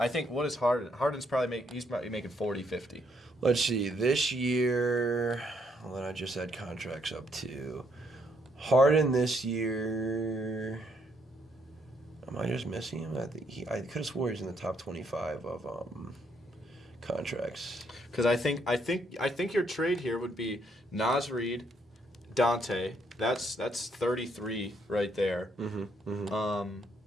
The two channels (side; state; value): both; normal; correlation 0.72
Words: think what is Harden? Harden's probably making 40, 50. Let's see. This year, well, then I just had contracts up to Harden this year. Am I just missing him? I could have swore he's in the top 25 of contracts. Because I think your trade here would be Naz Reid, Dante. That's 33 right there.